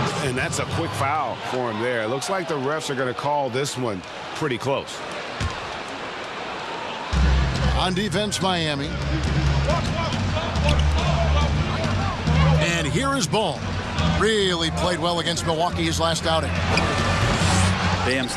And that's a quick foul for him there. It looks like the refs are going to call this one pretty close. On defense, Miami. And here is Ball. Really played well against Milwaukee his last outing. Bam's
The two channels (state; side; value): identical; both; correlation 1.00